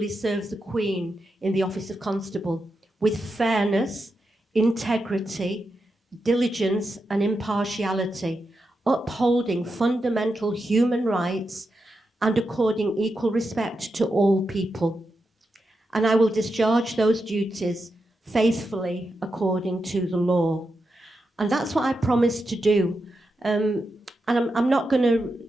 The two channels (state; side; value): normal; both; correlation 0.87